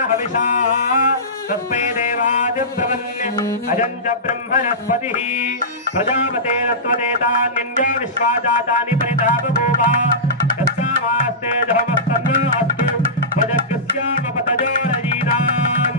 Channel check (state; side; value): normal; both; correlation -0.18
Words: हविषा तस्मै देवादिब्रवन्य अजञ्च ब्रह्मणस्पतिः प्रजापतेन त्वदेतान्यन्यो विश्वा जातानि परितः बभूव यस्यामास्ते जहमस्तन्नो अस्तु त्वजग्स्यामपतजो रजीनाम्